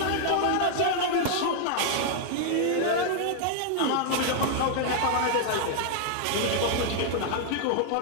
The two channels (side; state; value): both; different; correlation 0.00